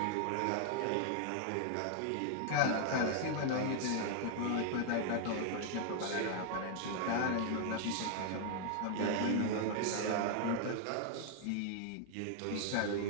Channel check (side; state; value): both; different; correlation 0.00